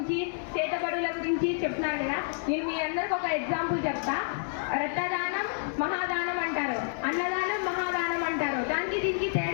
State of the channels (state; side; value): silent; right; digital silence